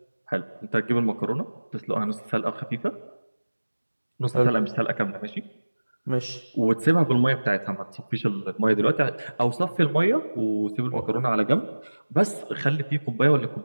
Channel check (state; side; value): inverted; both; correlation -1.00